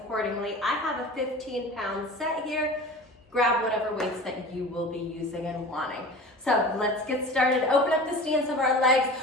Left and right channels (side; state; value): both; normal; correlation 0.37